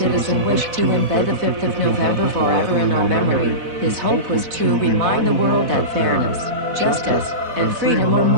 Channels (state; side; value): late; left; 4.1 ms